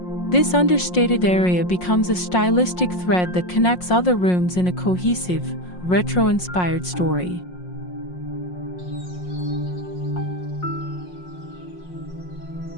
This understated area becomes a stylistic thread that connects other rooms in a cohesive, retro-inspired story.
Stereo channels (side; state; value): right; late; 5.6 ms